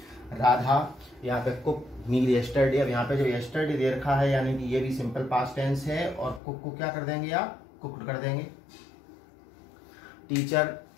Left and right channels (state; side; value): drops out; right; at 6.4 s